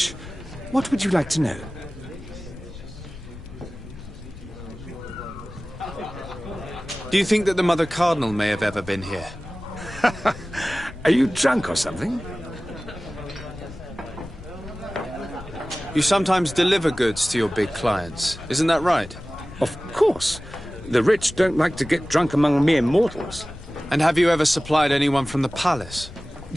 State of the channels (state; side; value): noise; left; rumble, 15 dB below the sound